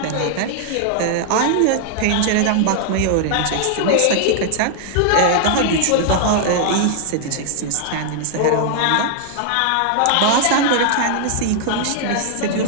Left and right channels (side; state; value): both; different; correlation 0.00